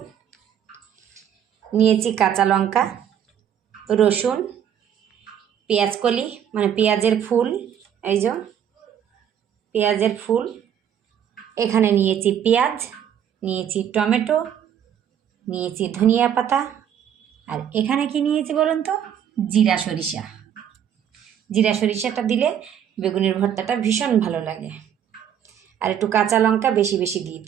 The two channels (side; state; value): left; quieter; 9.2 dB